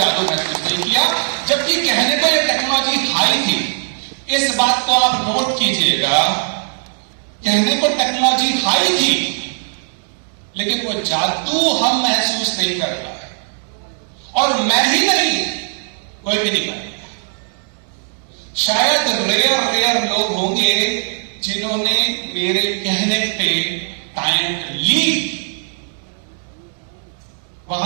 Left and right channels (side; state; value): left; silent; digital silence